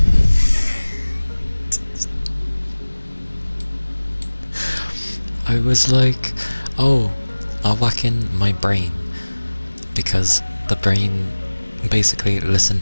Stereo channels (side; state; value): both; inverted; correlation -1.00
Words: I was like, oh, I'll whack in my brain, because the brain basically